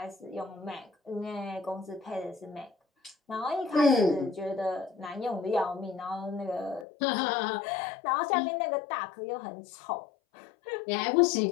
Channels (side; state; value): right; drops out; at 6.9 s